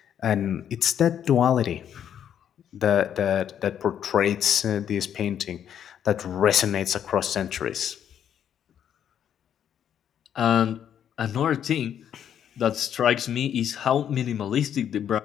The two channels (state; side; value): quieter; right; 9.4 dB